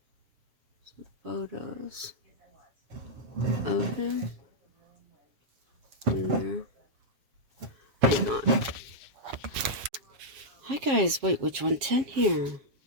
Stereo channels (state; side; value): late; left; 7.4 ms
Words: Some photos of him. Hang on. Hi guys, White Witch 110 here.